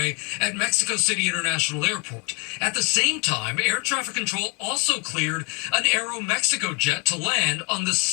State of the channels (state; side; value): quieter; right; 33.4 dB